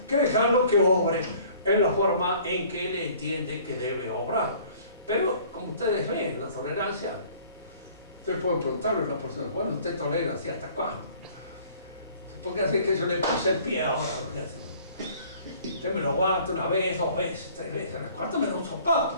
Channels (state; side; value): inverted; both; correlation -0.53